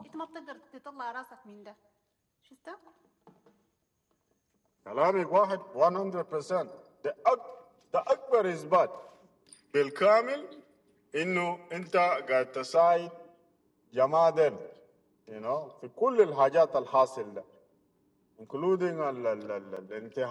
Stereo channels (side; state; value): both; identical; correlation 1.00